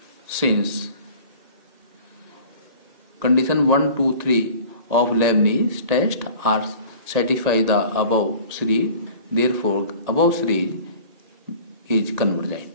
Since condition 1, 2, 3 of Leibniz test are satisfy the above series, therefore above series is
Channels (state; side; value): late; left; 1.8 ms